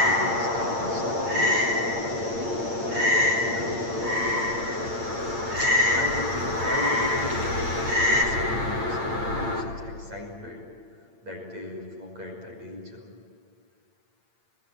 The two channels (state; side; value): late; left; 8.7 ms